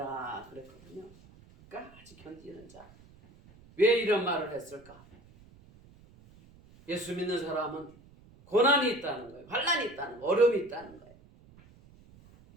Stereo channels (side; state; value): right; noise; rumble, 24 dB below the sound